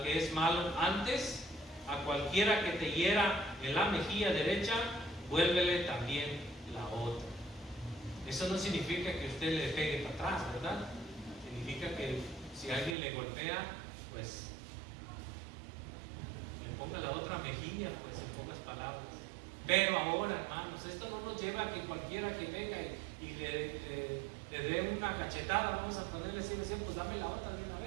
que es malo, antes a cualquiera que te hiera en la mejilla derecha, vuélvele también la otra. Eso no significa que usted le pegue para atrás, ¿verdad? Significa que si alguien le golpea, pues le ponga la otra mejilla, pues en pocas palabras. Pero ahora, hermanos, esto no nos lleva a que cualquiera que venga y le dé una cachetada, vamos a ponerle así, pues dame la otra de una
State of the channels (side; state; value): left; drops out; at 13.0 s